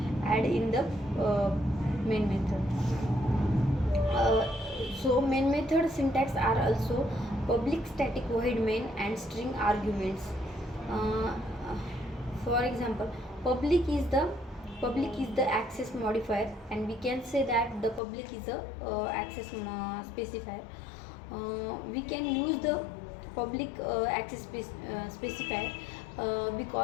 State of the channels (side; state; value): right; drops out; at 18.0 s